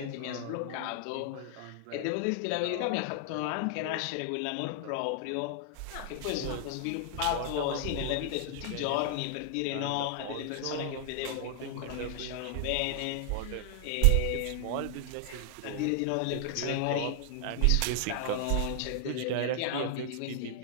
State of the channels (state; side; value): different; both; correlation 0.00